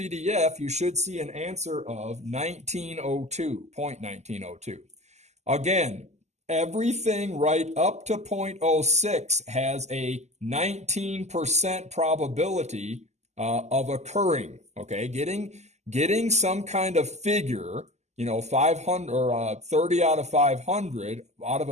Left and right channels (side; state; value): left; late; 0.33 ms